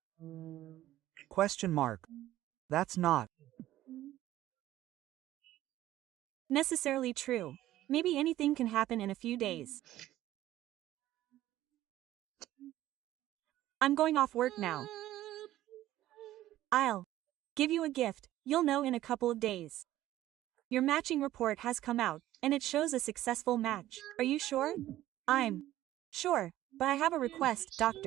Question mark. That's not necessarily true. Maybe anything can happen in a few days. I'm going off work now. I'll give you a gift. You'll know in a couple of days. Your matching report has come out, and it shows a successful match. Are you sure? I'm sure, but I have a request,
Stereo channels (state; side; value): quieter; left; 14.3 dB